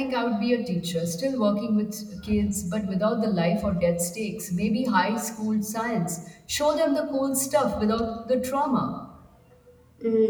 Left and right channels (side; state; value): both; identical; correlation 1.00